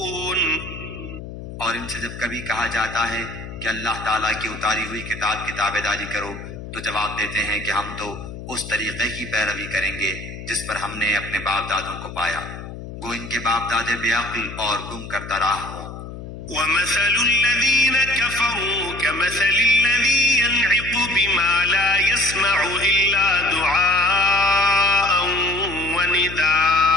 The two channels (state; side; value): noise; left; hum, 11 dB below the sound